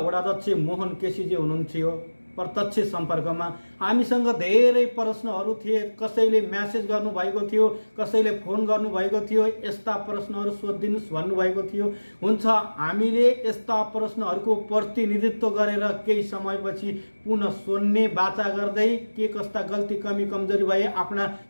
मोहन केसीजी हुनुहुन्थ्यो प्रत्यक्ष सम्पर्कमा। हामीसँग धेरै प्रश्नहरू थिए, कसैले म्यासेज गर्नुभएको थियो, कसैले फोन गर्नुभएको थियो, यस्ता प्रश्नहरू सोधिदिनुहोस् भन्नुभएको थियो। हुन्छ, हामीले यस्ता प्रश्नहरूको प्रतिनिधित्व गरेर केही समयपछि पुनः सोध्ने बाचा गर्दै के कस्ता गल्ती कमी कमजोरी भए आफ्ना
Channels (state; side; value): inverted; both; correlation -1.00